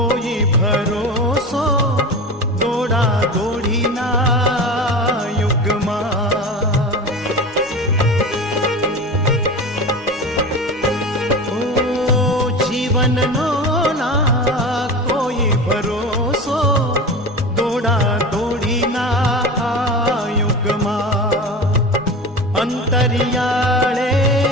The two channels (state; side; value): normal; both; correlation 0.29